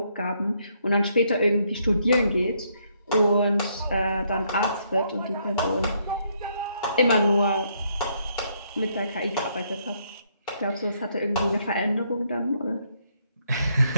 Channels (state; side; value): inverted; both; correlation -0.72